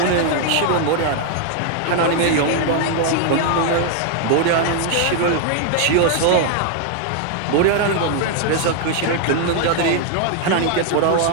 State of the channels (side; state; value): both; different; correlation 0.00